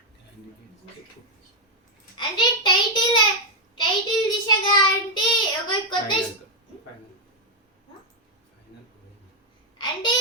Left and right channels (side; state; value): both; normal; correlation 0.01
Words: అంటే టైటిల్ దిశగా అంటే ఒక కొత్త అంటే